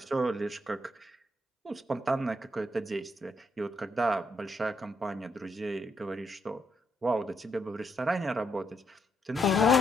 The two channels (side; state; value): both; normal; correlation 0.77